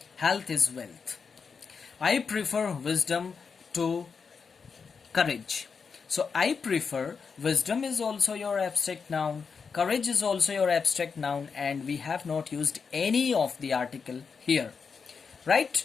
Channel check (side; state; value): right; quieter; 5.6 dB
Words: Health is wealth. I prefer wisdom to courage. So I prefer, wisdom is also your abstract noun. Courage is also your abstract noun and we have not used any of the article here. Right?